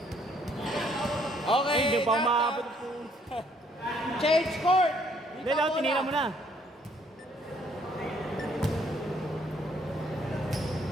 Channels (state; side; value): normal; both; correlation 0.65